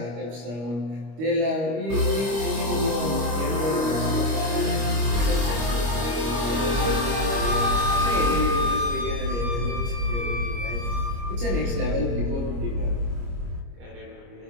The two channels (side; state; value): left; late; 25 ms